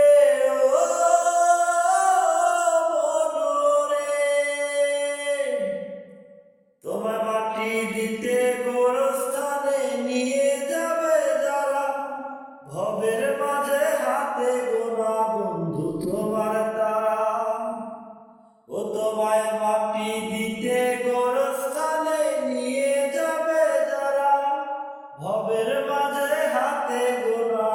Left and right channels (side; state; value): both; identical; correlation 1.00